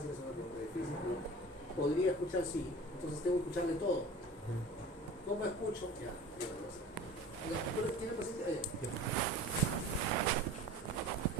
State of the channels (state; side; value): normal; both; correlation 0.40